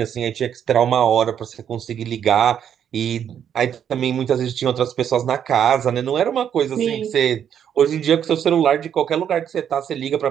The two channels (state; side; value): quieter; left; 8.9 dB